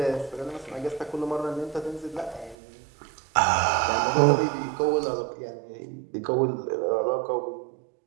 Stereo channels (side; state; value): left; drops out; at 2.6 s